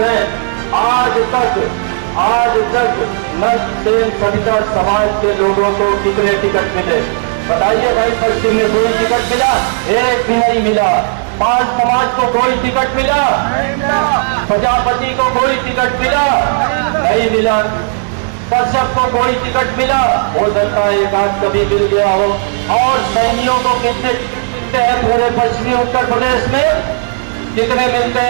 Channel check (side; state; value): left; silent; digital silence